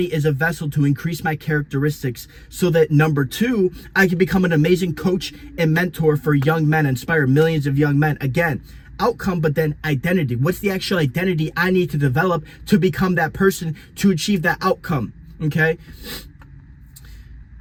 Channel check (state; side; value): identical; both; correlation 1.00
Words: as a vessel to increase my characteristics so that, number 2, I can become an amazing coach and mentor for young men, inspire millions of young men. Again, outcome, but then identity. What's the actual identity I need to develop to become that person, to achieve that outcome, okay?